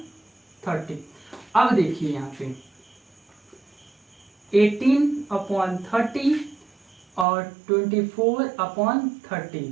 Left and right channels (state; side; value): drops out; left; at 7.2 s